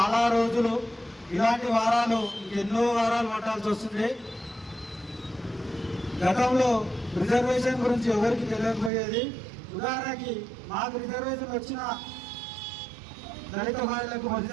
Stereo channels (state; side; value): drops out; left; at 8.9 s